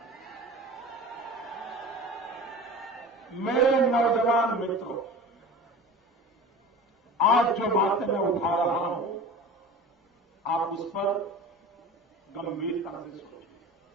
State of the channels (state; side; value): normal; both; correlation 0.36